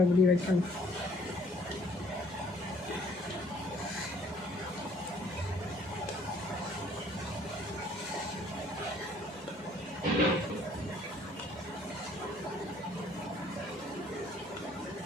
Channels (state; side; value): normal; both; correlation 0.60